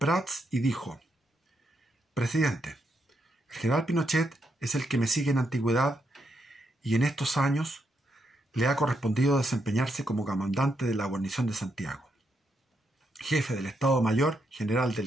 y dijo: «Presidente, el general Pinochet es el que me sigue en antigüedad y en estos años le ha correspondido desempeñarse como comandante de la guarnición de Santiago, jefe del Estado Mayor General del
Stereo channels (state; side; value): normal; both; correlation 0.80